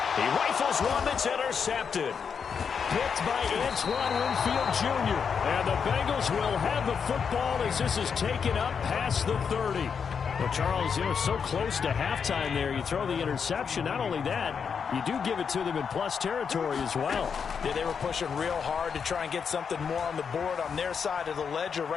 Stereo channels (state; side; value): quieter; right; 6.5 dB